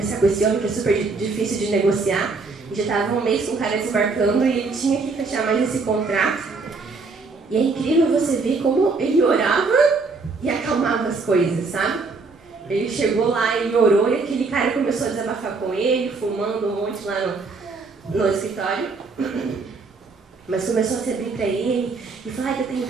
com esse homem que é super difícil de negociar. E já estava um mês com o cara desembarcando e ele tinha que fechar mais esse contrato. E é incrível você ver como ele orava e acalmava as coisas, sabe? Ele chegou lá, ele orou e aquele cara começou a desabafar com ele, fumando um monte lá no escritório. Mas começou a se abrir para ele e falar que eu tenho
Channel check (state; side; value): quieter; left; 4.1 dB